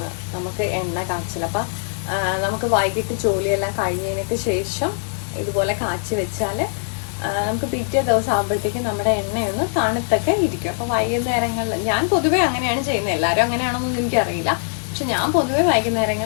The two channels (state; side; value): silent; right; digital silence